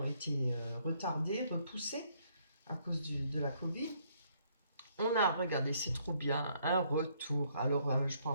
été retardés, repoussés à cause de la Covid. On a, regardé, c'est trop bien, un retour. Alors, je ne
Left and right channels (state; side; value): inverted; both; correlation -0.68